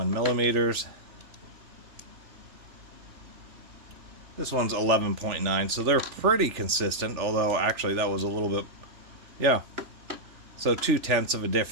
millimeters. This one's 11.9, so they're pretty consistent, although actually that was a little bit, yeah. So 2/10 of a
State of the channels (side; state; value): left; late; 3.4 ms